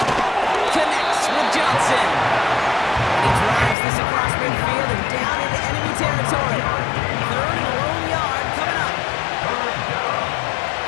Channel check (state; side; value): drops out; right; at 3.8 s